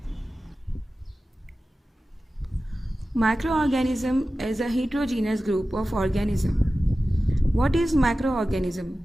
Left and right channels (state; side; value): normal; both; correlation 0.95